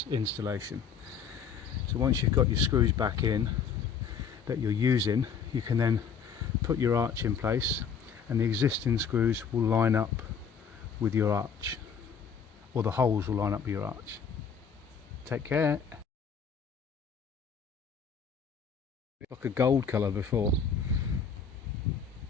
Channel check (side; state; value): right; quieter; 6.5 dB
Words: installation. So once you've got your screws back in that you're using, you can then put your arch in place, and the existing screws will line up with your arch, or the holes will line up with your arch. Take care. It's like a gold colour before.